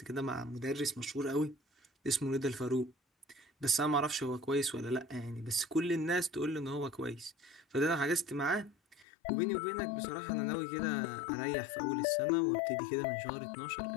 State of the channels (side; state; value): right; drops out; at 9.1 s